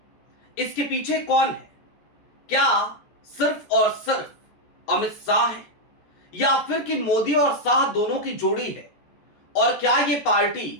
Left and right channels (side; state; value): right; late; 14 ms